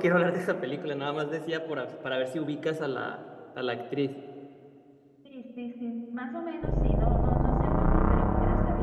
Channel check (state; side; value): identical; both; correlation 1.00